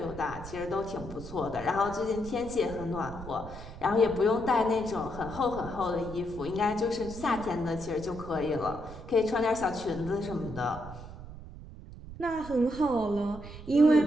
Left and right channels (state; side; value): noise; right; rumble, 13 dB below the sound